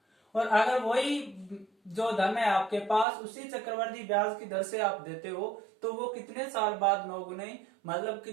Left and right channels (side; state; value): left; drops out; at 3.1 s